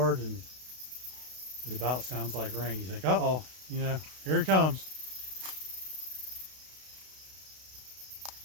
and it about sounds like rain. You think, uh-oh, you know, here it comes.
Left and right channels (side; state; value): left; late; 32 ms